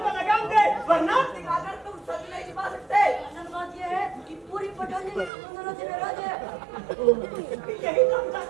को लगाम दे, वरना अगर तुम सच नहीं छिपा सकते, असल बात ये है कि पूरी पठानी तुम दोनों से नाराज है। यही तो हम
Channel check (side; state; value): left; drops out; at 5.3 s